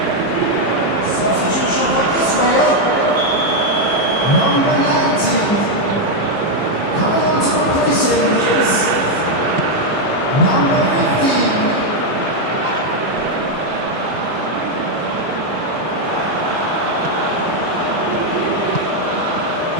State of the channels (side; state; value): left; late; 5.0 ms